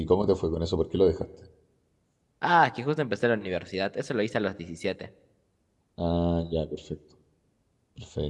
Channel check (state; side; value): identical; both; correlation 1.00